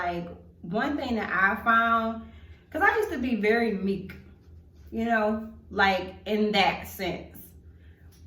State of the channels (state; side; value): identical; both; correlation 1.00